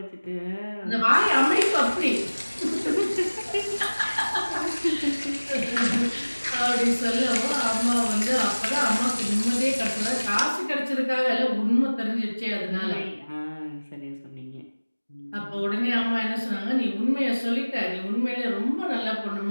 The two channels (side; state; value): both; inverted; correlation -1.00